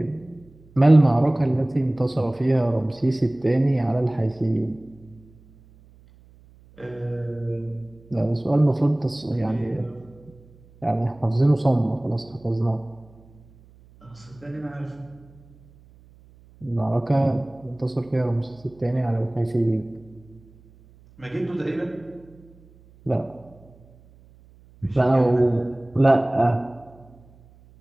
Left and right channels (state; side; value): noise; right; hum, 26 dB below the sound